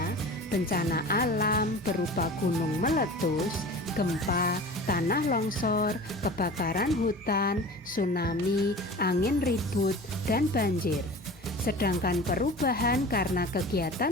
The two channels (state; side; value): normal; both; correlation 0.37